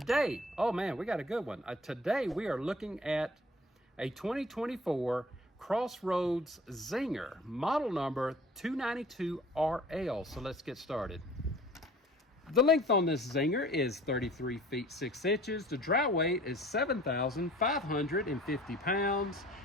oh man, we got a good one. Today we are looking at a 2024 Crossroads Zinger, model number 292RL. So let's get started. The length on this Zinger is 33 feet 6 inches. The dry weight is 7,550 pounds.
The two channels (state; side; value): normal; both; correlation 0.49